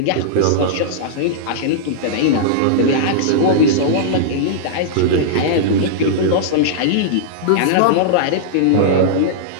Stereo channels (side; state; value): both; different; correlation -0.02